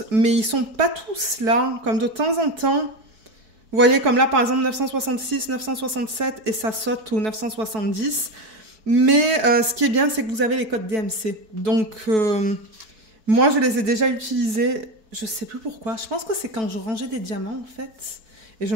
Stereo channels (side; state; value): left; late; 4.6 ms